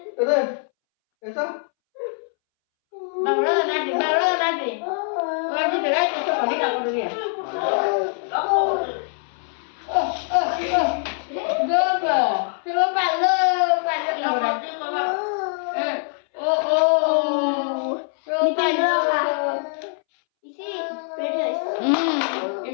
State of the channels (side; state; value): right; silent; 63 dB below the other